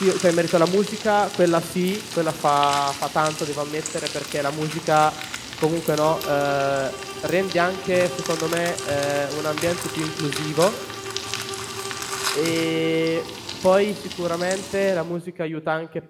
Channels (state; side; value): identical; both; correlation 1.00